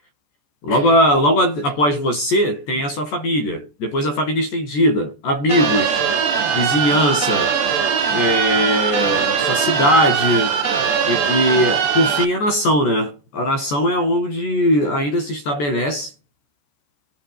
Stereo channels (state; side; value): late; right; 14 ms